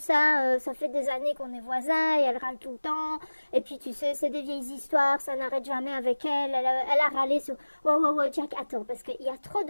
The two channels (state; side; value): inverted; both; correlation -1.00